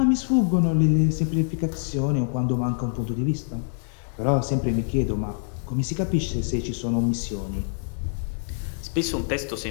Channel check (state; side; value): silent; right; digital silence